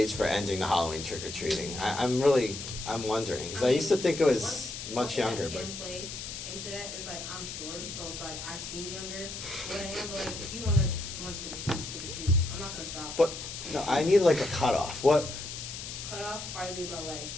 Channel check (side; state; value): left; noise; hiss, 8 dB below the sound